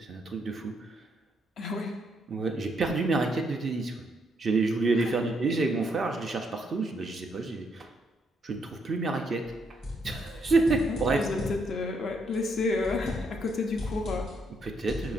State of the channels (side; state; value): both; normal; correlation 0.75